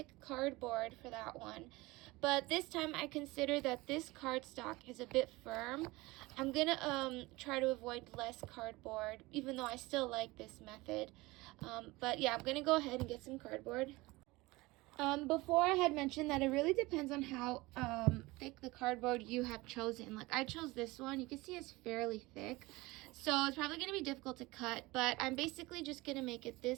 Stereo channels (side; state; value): left; quieter; 21.5 dB